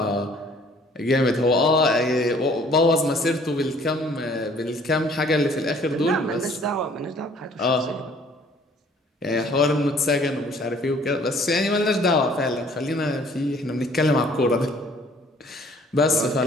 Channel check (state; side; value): normal; both; correlation 0.57